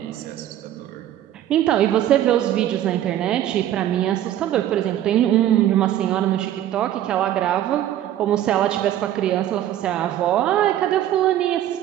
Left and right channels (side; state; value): left; quieter; 12.1 dB